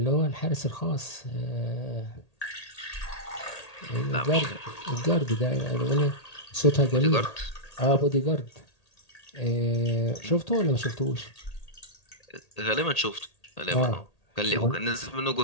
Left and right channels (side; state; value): right; late; 1.8 ms